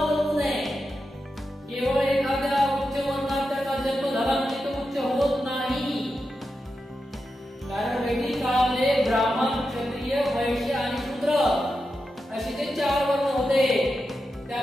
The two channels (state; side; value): normal; both; correlation 0.89